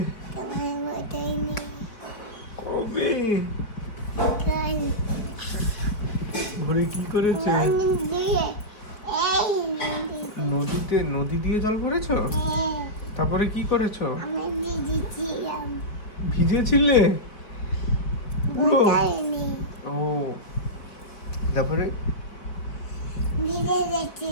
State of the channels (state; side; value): late; right; 4.4 ms